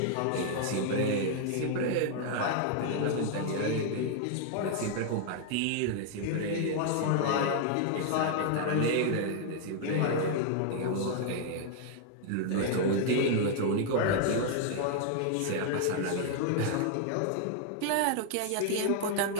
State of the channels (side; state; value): both; different; correlation 0.00